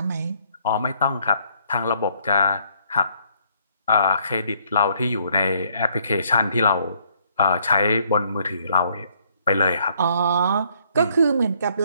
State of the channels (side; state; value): both; inverted; correlation -0.67